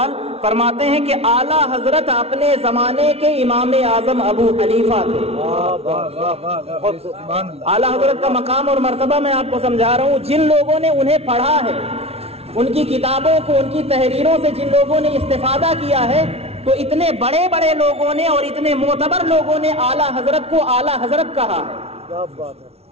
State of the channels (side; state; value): left; late; 0.30 ms